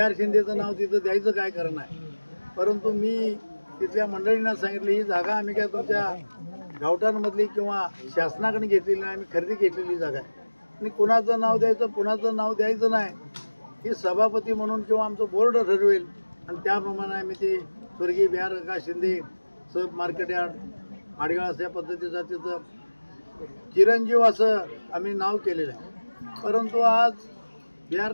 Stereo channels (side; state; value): both; inverted; correlation -1.00